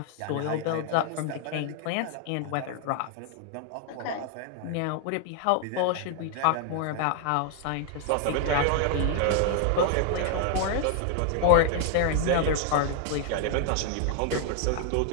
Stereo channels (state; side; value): different; both; correlation 0.00